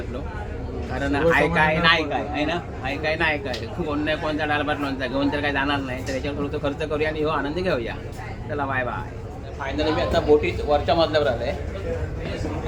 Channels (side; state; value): both; identical; correlation 1.00